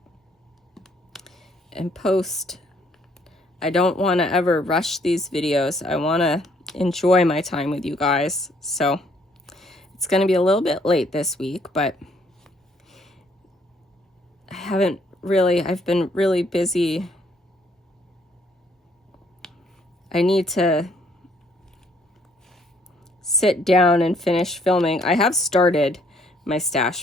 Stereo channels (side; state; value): both; normal; correlation 0.66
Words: and post. I don't want to ever rush these videos. I want to enjoy my time with you guys. So it's going to be a little bit late this week, but I've been really busy. I need to sit down and finish filming. I have started my